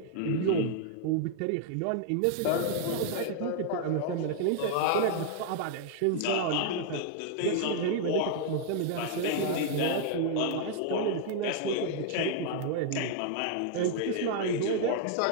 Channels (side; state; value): both; different; correlation 0.00